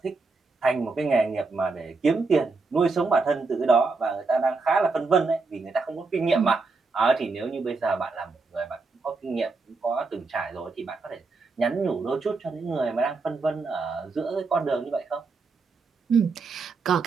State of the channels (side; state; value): left; quieter; 4.0 dB